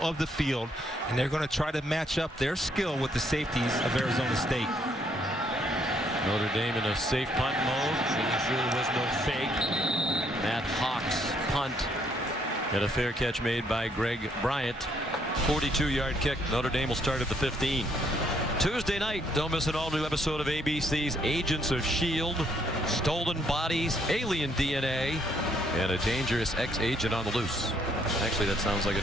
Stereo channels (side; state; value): both; normal; correlation 0.69